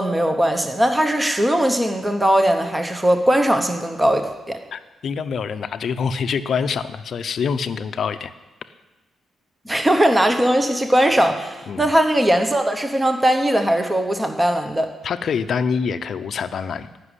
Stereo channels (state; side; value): normal; both; correlation 0.91